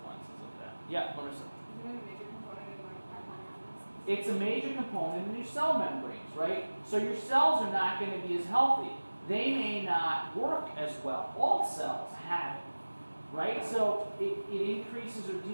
of that? Yeah, Marissa. It's a major component in your cell membranes, right? So your cells are not going to be as healthy. They may not work as well. All cells have it, right? So it increases or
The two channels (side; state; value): both; inverted; correlation -1.00